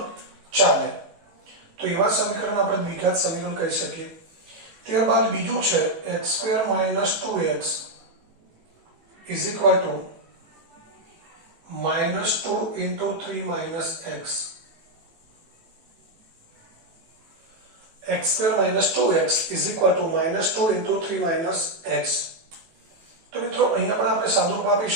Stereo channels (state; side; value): late; left; 18 ms